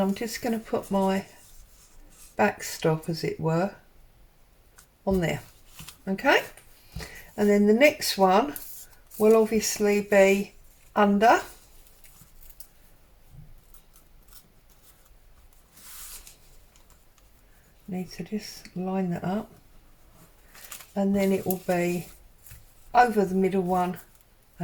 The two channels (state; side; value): identical; both; correlation 1.00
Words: just going to put my backstop, as it were, on there. Okay, and then the next one will obviously be under, need to just line that up, and then it will be over the middle one